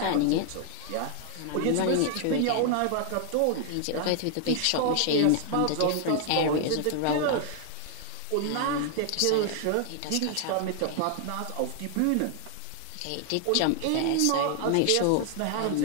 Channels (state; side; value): different; both; correlation 0.00